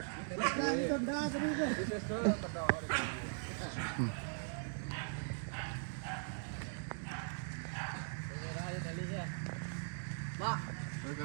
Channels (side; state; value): left; silent; digital silence